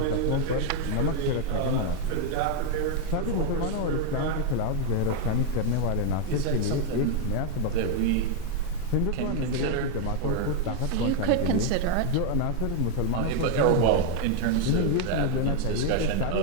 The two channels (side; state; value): both; different; correlation 0.01